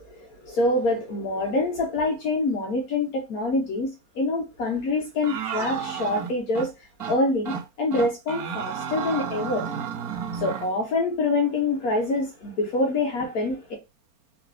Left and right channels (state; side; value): late; right; 4.3 ms